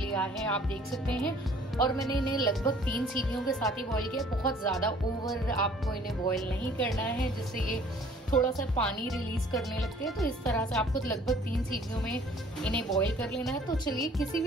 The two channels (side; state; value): both; normal; correlation 0.54